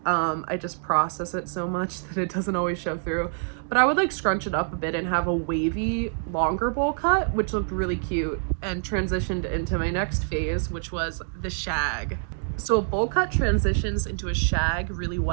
I just process it so much that it doesn't always show through. But I would like scrunch it up a bit and have a wavy, longer bowl cut, which looked really cute, and transitioned into my next phase, which was the shag. So a bowl cut transitions into a shag really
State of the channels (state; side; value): silent; left; digital silence